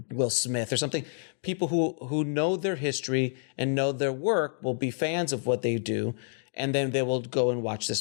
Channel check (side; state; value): right; silent; digital silence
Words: Will Smith or something, people who know their history and know their work will be fans of what they do. And then they will go and watch